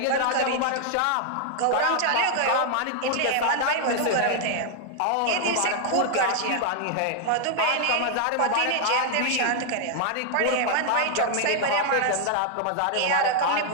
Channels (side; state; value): both; different; correlation 0.00